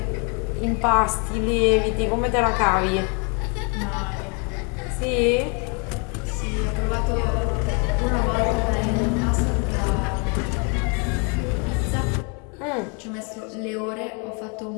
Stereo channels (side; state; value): right; quieter; 35.5 dB